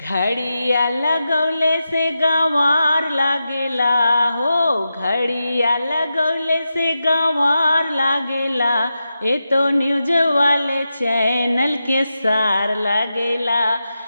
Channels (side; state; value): both; inverted; correlation -0.90